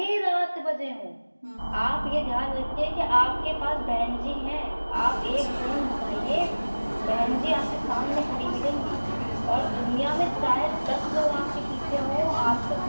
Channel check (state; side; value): inverted; both; correlation -1.00